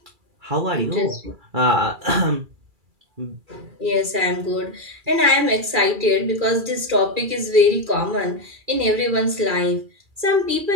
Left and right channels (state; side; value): late; left; 2.3 ms